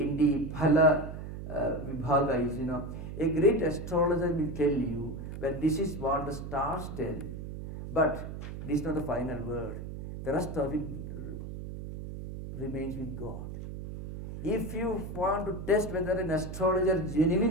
the Phala Vibhaga is, a great astrologer will tell you, well, this is what the stars tell, but this is not the final word. The rest of it remains with God. If you want to test whether an astrologer is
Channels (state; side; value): noise; right; hum, 8 dB below the sound